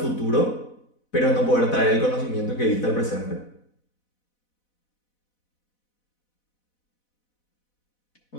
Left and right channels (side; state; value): right; late; 4.1 ms